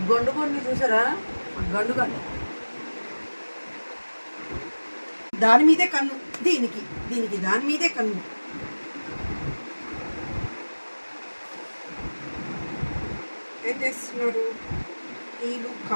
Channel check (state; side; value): inverted; both; correlation -1.00